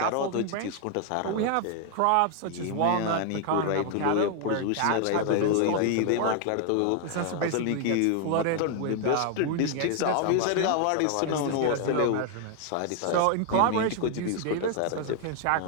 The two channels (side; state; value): both; different; correlation 0.00